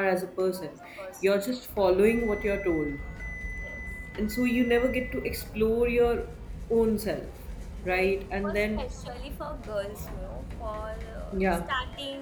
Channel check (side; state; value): both; identical; correlation 1.00